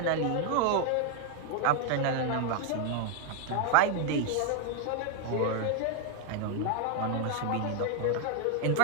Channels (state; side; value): different; both; correlation 0.00